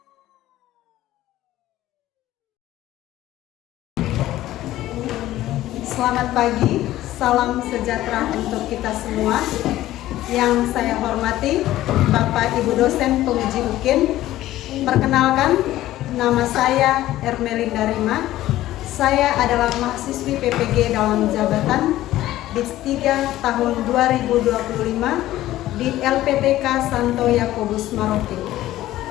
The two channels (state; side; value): quieter; right; 14.8 dB